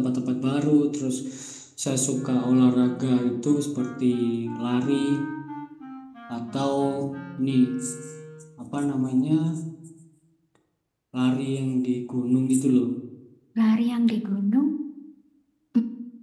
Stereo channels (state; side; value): identical; both; correlation 1.00